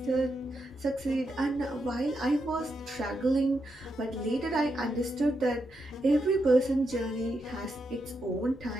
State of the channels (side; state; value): both; normal; correlation 0.83